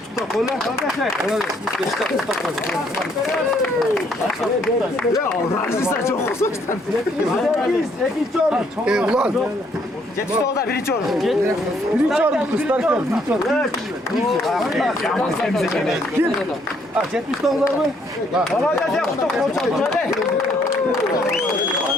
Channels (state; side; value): normal; both; correlation 0.68